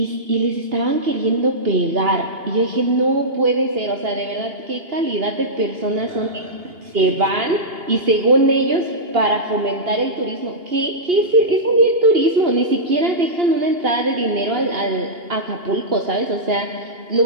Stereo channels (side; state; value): left; late; 2.8 ms